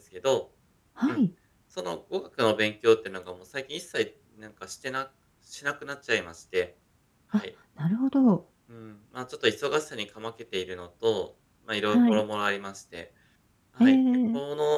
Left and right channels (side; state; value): both; identical; correlation 1.00